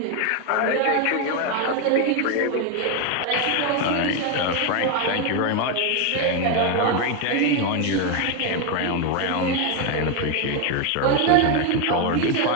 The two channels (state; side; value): different; both; correlation 0.02